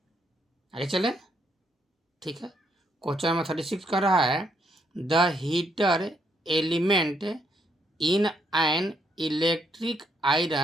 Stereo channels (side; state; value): both; normal; correlation 0.74